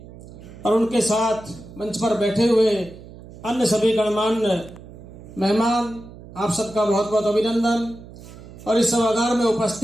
और उनके साथ मंच पर बैठे हुए अन्य सभी गणमान्य मेहमान, आप सबका बहुत बहुत अभिनंदन। और इस सभागार में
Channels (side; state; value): right; noise; hum, 17 dB below the sound